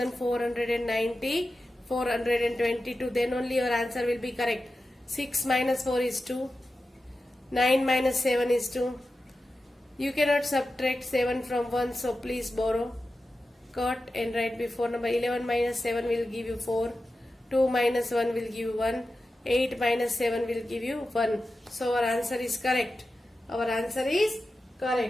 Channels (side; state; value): both; normal; correlation 0.92